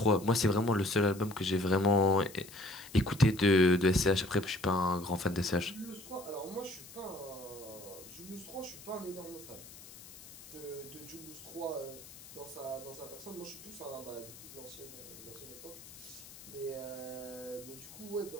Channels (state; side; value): noise; left; hiss, 17 dB below the sound